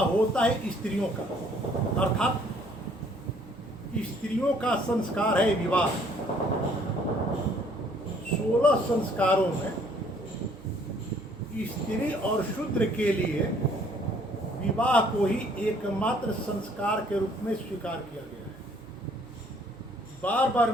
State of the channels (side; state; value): right; noise; hum, 22 dB below the sound